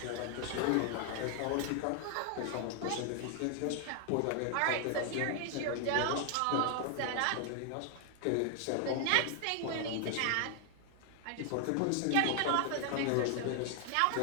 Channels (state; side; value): different; both; correlation 0.00